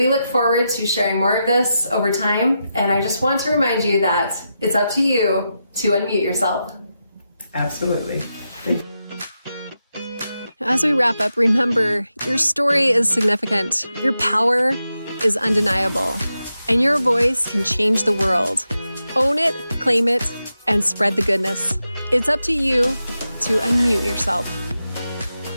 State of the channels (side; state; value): both; inverted; correlation -0.88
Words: look forward to sharing more of this over time. And I just want to remind you that it's up to you to unmute yourself. Absolutely. As we wrap up, remember, your story is significant. Your power is undeniable, and your voice can change the world. Own it, claim it, and spread the goodness. It's up to you to unmute yourself.